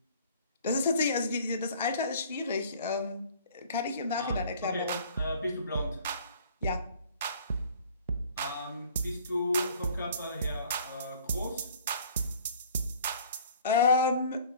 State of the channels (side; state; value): both; inverted; correlation -0.52